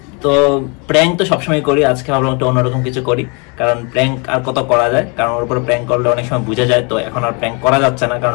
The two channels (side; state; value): right; quieter; 32.6 dB